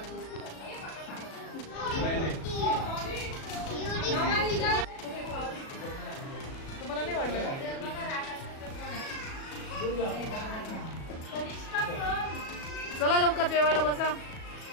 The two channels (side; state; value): right; late; 37 ms